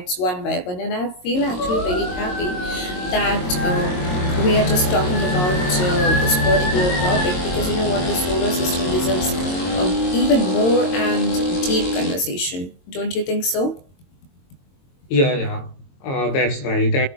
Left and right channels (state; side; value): late; right; 22 ms